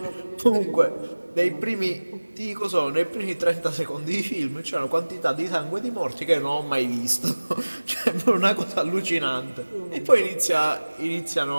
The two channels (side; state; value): both; inverted; correlation -1.00